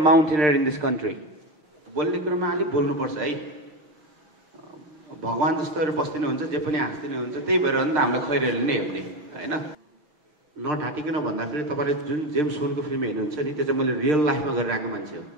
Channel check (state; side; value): late; left; 6.6 ms